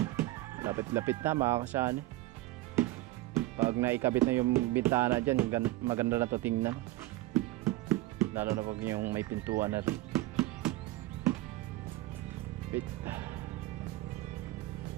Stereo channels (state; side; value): quieter; left; 17.9 dB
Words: Lapit-lapit na mga kasani. Pag naikabit na yung bintana dyan, maganda na to tingnan. Lalo na pag yung may pintuan na rin. Bit.